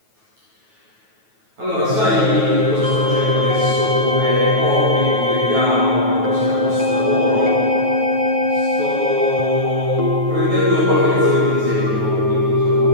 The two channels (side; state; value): left; late; 9.3 ms